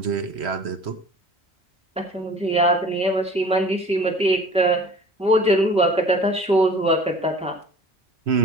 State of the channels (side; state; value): both; normal; correlation 0.45